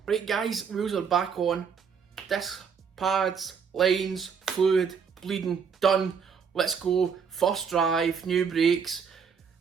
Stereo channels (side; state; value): left; quieter; 6.5 dB